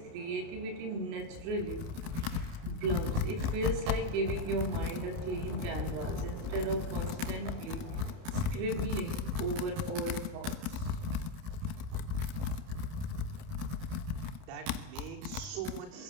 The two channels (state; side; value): late; left; 30 ms